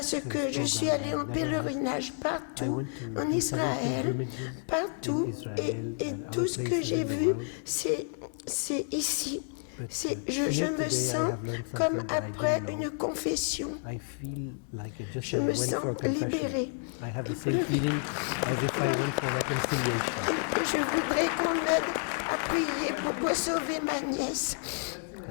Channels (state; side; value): silent; right; 58 dB below the other